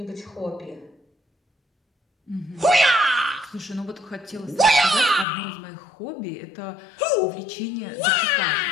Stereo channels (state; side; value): drops out; right; at 5.2 s